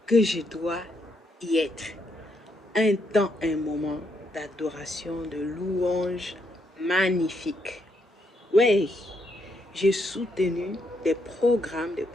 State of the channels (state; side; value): normal; both; correlation 0.76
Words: que je dois y être. Un temps, un moment d'adoration, de louange magnifique. Oui, j'ai soutenu des programmes